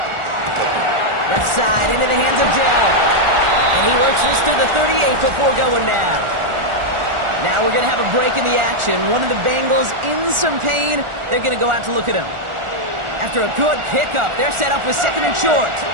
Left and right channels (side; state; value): left; late; 1.4 ms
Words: Left side into the hands of Dell. And he works this to the 38 before going down. Now we're going to have a break in the action. One of the Bengals in some pain. They're going to go out to look at him. After a good pickup, they're set up with 2nd and short.